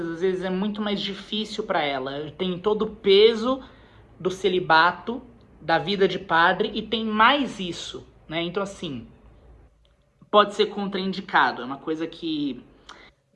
às vezes é muito mais difícil para ela. Tem todo o peso do celibato, da vida de padre, e tem mais isso, né? Então, assim, pode ser contraindicado. É uma coisa que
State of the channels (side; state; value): both; identical; correlation 1.00